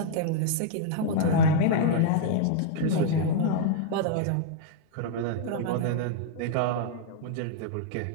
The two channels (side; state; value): both; different; correlation -0.01